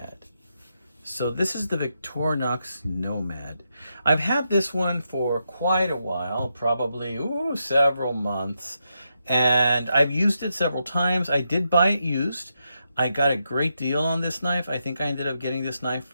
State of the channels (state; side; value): inverted; both; correlation -0.83